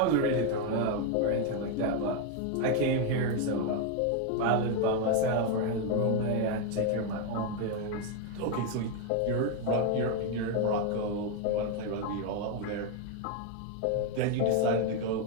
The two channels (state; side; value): different; both; correlation 0.01